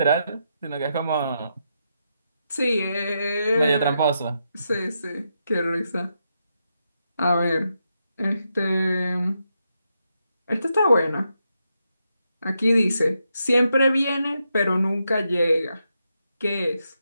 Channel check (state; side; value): inverted; both; correlation -0.83